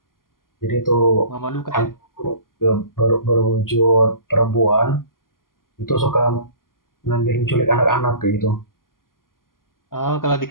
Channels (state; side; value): late; right; 0.91 ms